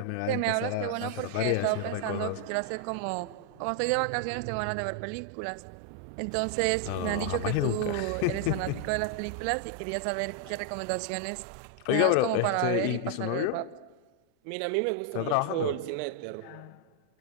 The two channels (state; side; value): different; both; correlation 0.00